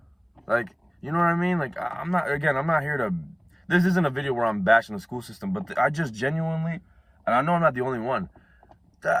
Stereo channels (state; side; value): identical; both; correlation 1.00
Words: Like, you know what I mean? Like, I'm not here to, this isn't a video where I'm bashing the school system, but I just genuinely, and I know I'm not the only one,